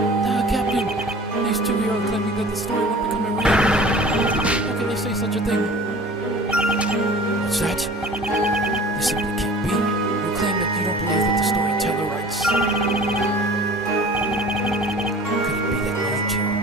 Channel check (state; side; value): normal; both; correlation 0.44